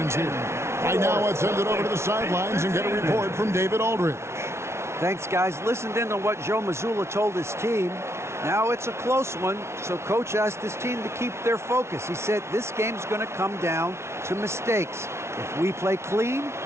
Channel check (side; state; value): left; late; 0.13 ms